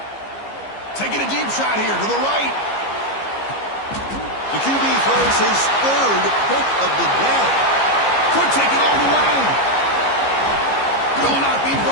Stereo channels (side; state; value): right; late; 15 ms